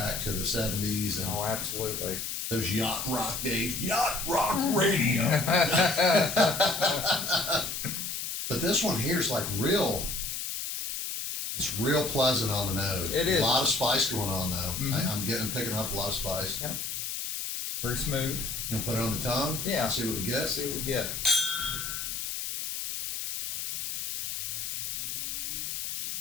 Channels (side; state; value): left; noise; hiss, 4 dB below the sound